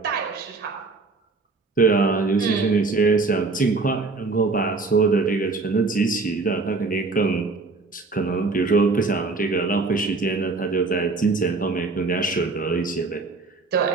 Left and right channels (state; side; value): quieter; left; 3.9 dB